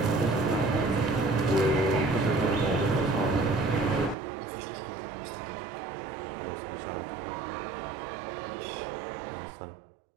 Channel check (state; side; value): drops out; left; at 4.2 s